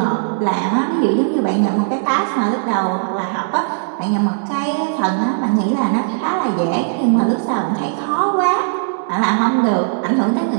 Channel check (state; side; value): silent; left; digital silence